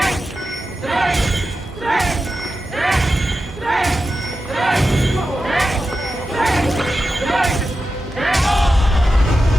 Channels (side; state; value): both; normal; correlation 0.91